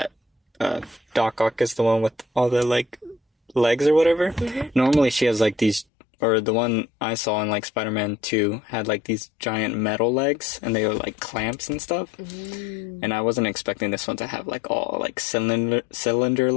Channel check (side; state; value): right; drops out; at 5.9 s